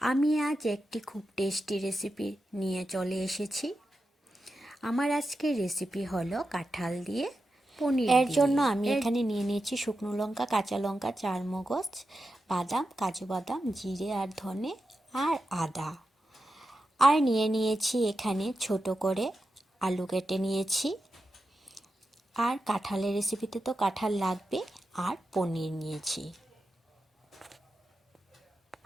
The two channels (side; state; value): both; normal; correlation 0.90